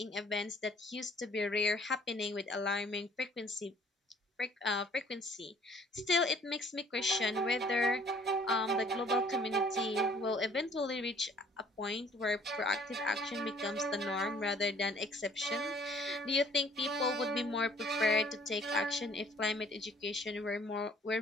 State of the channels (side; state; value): both; normal; correlation 0.57